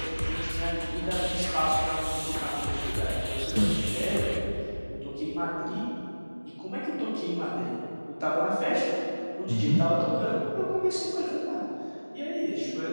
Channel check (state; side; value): inverted; both; correlation -1.00